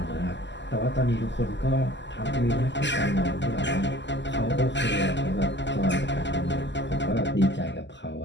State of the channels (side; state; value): right; late; 0.52 ms